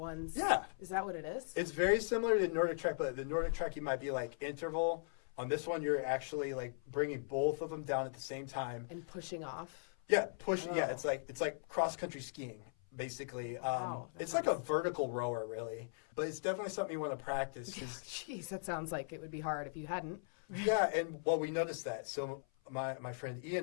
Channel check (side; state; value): right; silent; 52 dB below the other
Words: Yeah. Is that what it is? It's very similar to the Nordic Track, but the Nordic Track, you might be like interval. On this one, you're actually like bringing both of them down at the same time and pushing off. Yeah, pushing. Oh. Yeah, it's like cross country skiing, basically. Wow, it's like a vertical rower, really, but it's definitely something you want to practice. Jeez, that sounds like it would be hard if you hadn't. Yeah, and we noticed that. So my friend